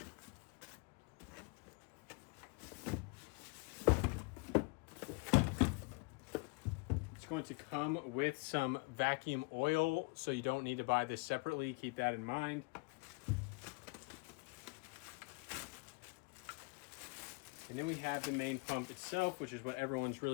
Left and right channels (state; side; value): quieter; right; 30.7 dB